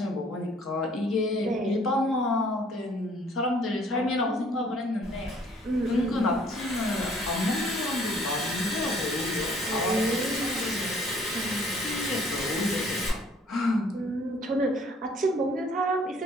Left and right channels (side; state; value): both; normal; correlation 0.58